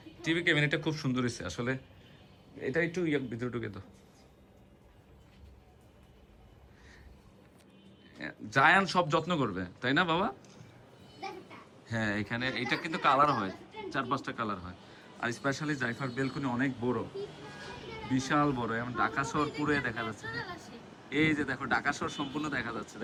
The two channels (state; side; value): identical; both; correlation 1.00